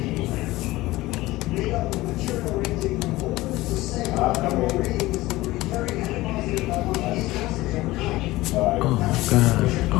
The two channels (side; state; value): right; quieter; 18.5 dB